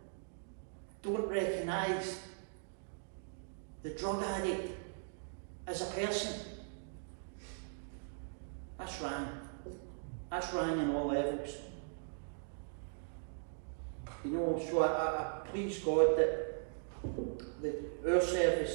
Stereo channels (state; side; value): silent; left; digital silence